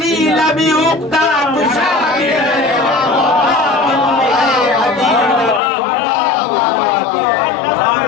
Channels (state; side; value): drops out; right; at 5.6 s